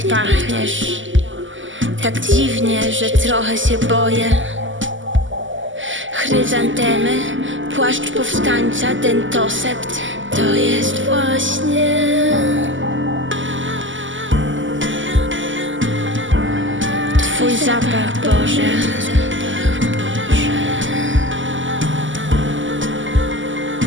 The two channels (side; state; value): left; late; 0.56 ms